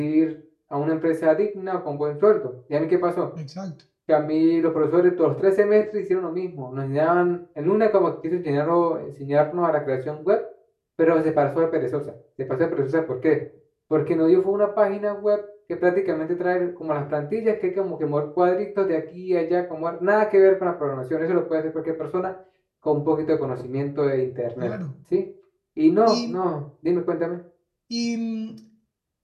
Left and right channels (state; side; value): identical; both; correlation 1.00